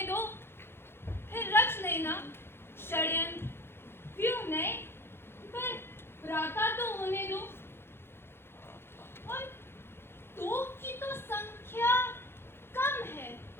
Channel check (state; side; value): late; right; 0.11 ms